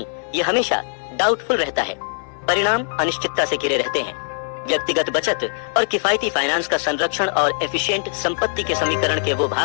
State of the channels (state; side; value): silent; right; 62 dB below the other